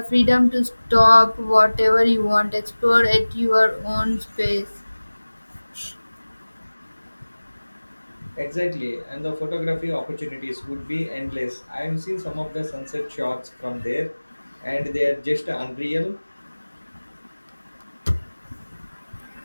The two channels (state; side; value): inverted; both; correlation -1.00